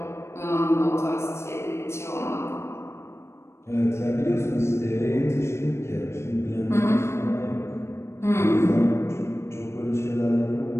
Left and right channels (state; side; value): late; right; 0.13 ms